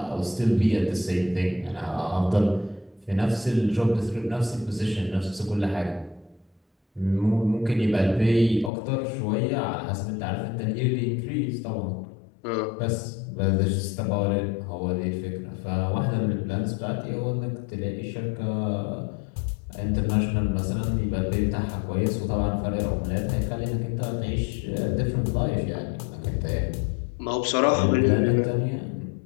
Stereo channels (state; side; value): drops out; right; at 8.7 s